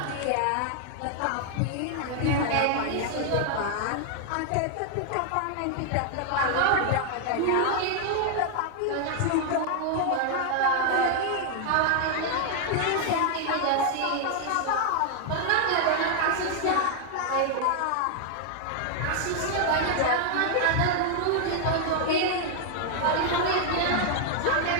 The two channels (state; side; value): different; both; correlation 0.00